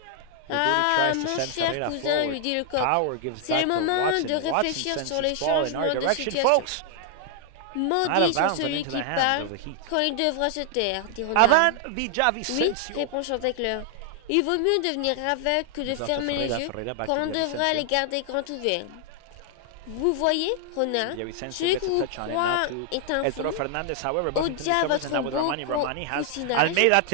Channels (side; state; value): both; different; correlation 0.00